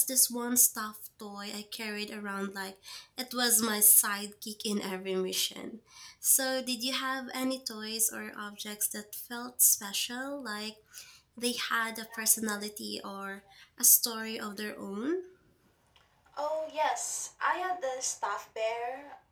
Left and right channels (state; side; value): identical; both; correlation 1.00